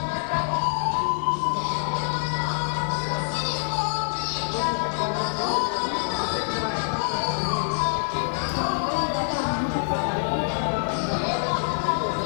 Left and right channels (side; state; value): right; silent; 61 dB below the other